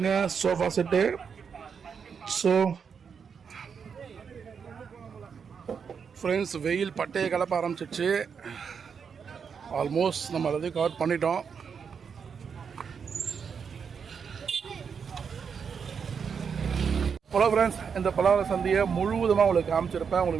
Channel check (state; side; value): quieter; left; 6.5 dB